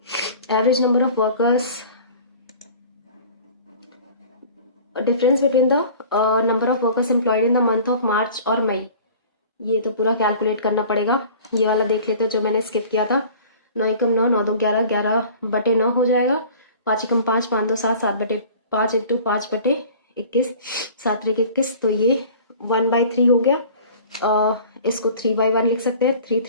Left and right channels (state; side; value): inverted; both; correlation -0.45